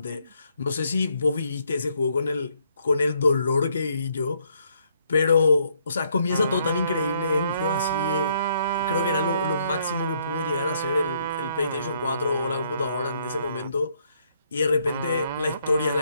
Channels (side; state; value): both; inverted; correlation -0.70